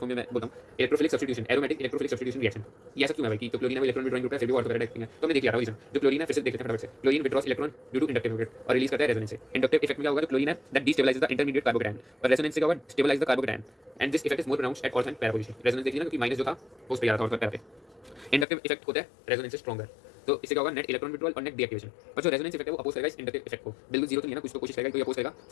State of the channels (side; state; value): right; drops out; at 18.4 s